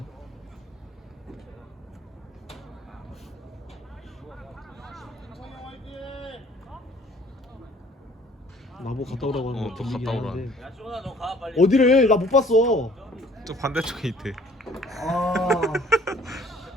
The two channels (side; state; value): both; normal; correlation 0.56